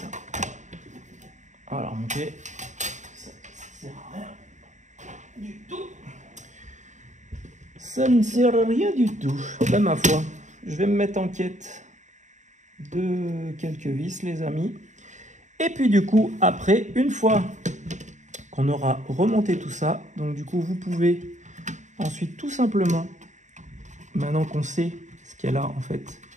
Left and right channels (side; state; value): left; late; 0.35 ms